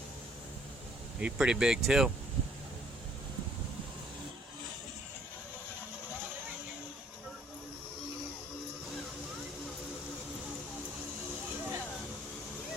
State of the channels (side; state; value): both; normal; correlation 0.63